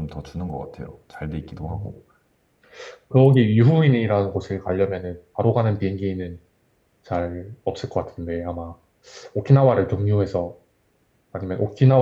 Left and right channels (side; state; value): both; identical; correlation 1.00